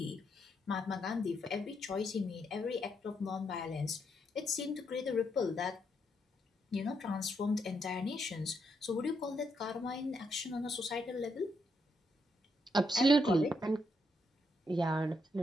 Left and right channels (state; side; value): normal; both; correlation 0.78